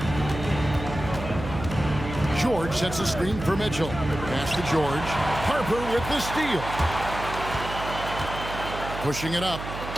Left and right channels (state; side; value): noise; right; hum, 8 dB below the sound